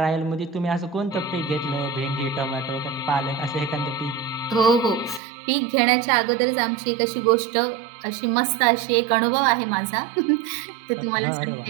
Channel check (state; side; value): drops out; left; at 5.2 s